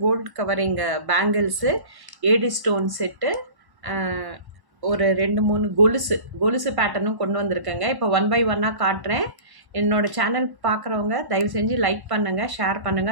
gold covering bangles, AD stone set, ஒரு 2-3 கொலுசு பேட்டர்னும் கொண்டு வந்திருக்கேங்க. இப்போ ஒன் பை ஒன்னாக காட்டுறேன். என்னோட சேனல் பார்க்குறவங்க தயவு செஞ்சு லைக் பண்ணுங்கள், ஷேர்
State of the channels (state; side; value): late; left; 1.1 ms